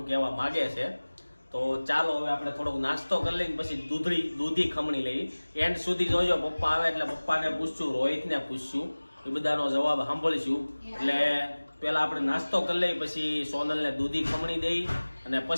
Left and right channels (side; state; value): both; inverted; correlation -1.00